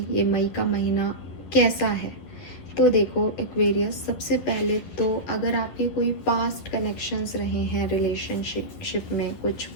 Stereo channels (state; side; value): late; right; 11 ms